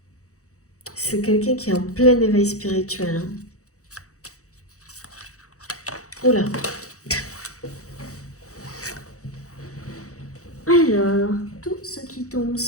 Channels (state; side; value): late; right; 0.65 ms